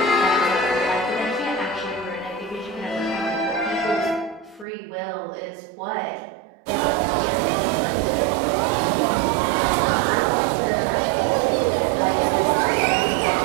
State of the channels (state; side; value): drops out; left; at 4.7 s